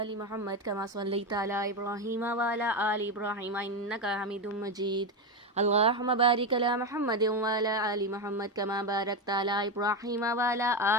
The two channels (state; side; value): normal; both; correlation 0.13